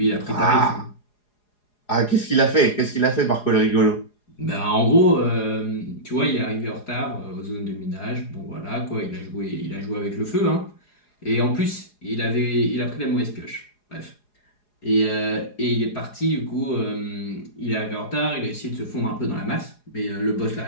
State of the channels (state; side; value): late; right; 4.8 ms